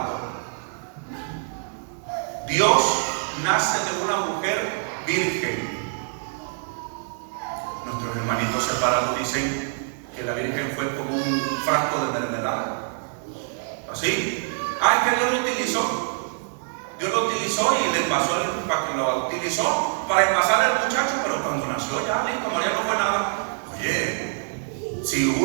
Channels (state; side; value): silent; left; digital silence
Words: Dios nace de una mujer virgen. Nuestros hermanitos separados dicen que la Virgen fue como un frasco de mermelada. ¿Así? Es que Dios lo utilizó. Dios lo utilizó y le pasó lo utilizó para envasar al muchacho, pero cuando nació ya listo, María no fue nada. Oye,